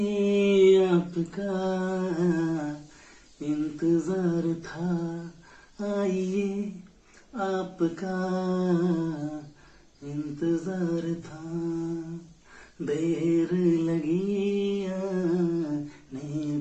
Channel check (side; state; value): both; identical; correlation 1.00